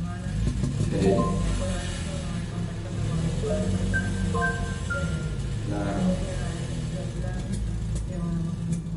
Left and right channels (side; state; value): both; identical; correlation 1.00